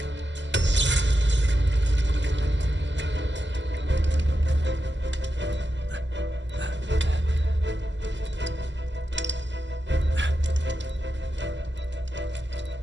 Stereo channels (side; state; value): both; normal; correlation 0.88